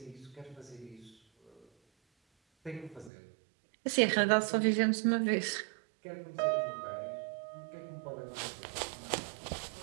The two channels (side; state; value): left; drops out; at 3.1 s